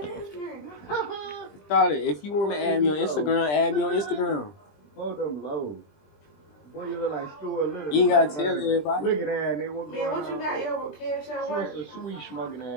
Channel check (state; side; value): late; right; 20 ms